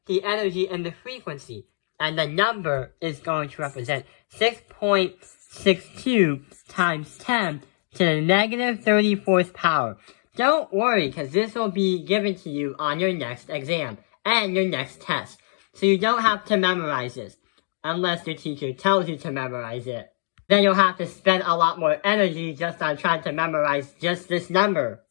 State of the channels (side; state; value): right; silent; digital silence